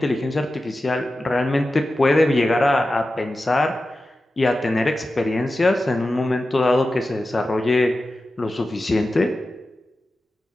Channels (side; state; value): both; normal; correlation 0.93